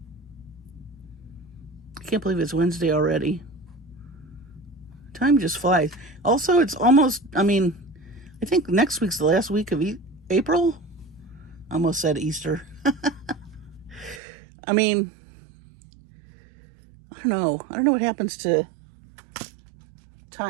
I can't believe it's Wednesday already. Time just flies. Also, it's almost, I mean, I think next week's the last week of April. I almost said Easter. I mean, I don't know. I don't know what happens to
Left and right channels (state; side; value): drops out; left; at 14.2 s